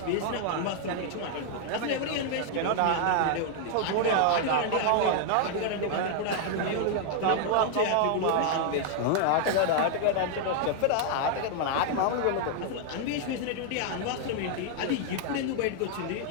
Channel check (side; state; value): both; different; correlation 0.00